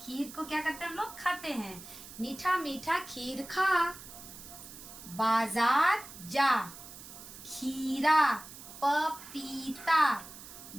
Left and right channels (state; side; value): noise; right; hiss, 15 dB below the sound